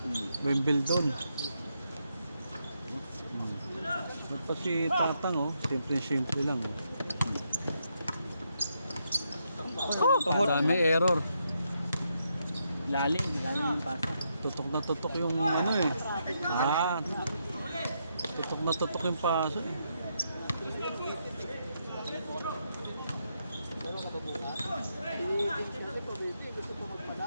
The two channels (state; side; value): inverted; both; correlation -0.79